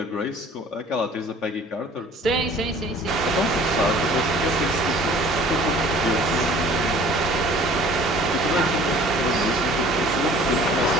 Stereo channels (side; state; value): both; normal; correlation 0.50